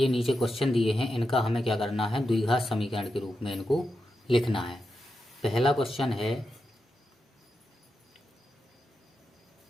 नीचे क्वेश्चन दिए हैं इनका हमें क्या करना है, द्विघात समीकरण के रूप में इनको लिखना है। पहला क्वेश्चन है,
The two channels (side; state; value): both; normal; correlation 0.88